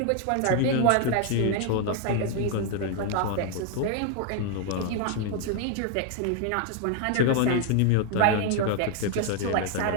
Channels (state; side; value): different; both; correlation 0.01